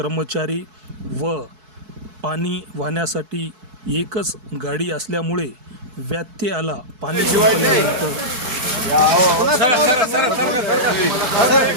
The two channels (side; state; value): left; late; 4.6 ms